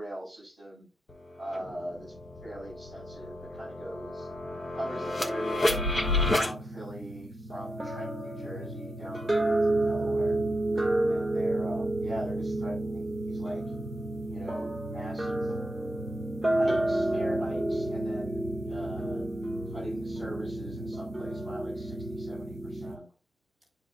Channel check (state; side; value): normal; both; correlation 0.87